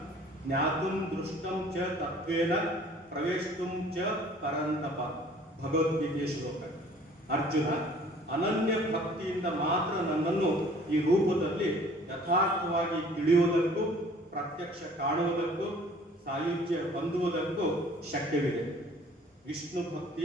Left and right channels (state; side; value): normal; both; correlation 0.53